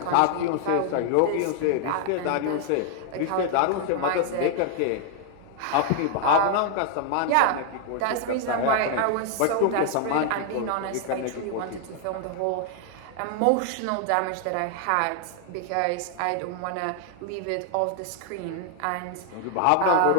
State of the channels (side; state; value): both; different; correlation 0.00